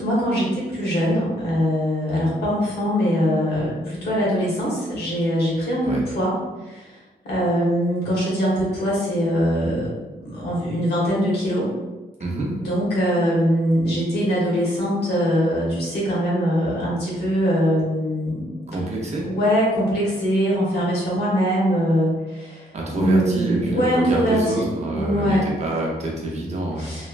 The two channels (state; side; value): normal; both; correlation 0.69